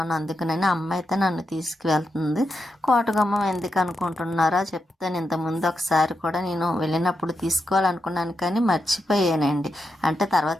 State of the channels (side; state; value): both; normal; correlation 0.86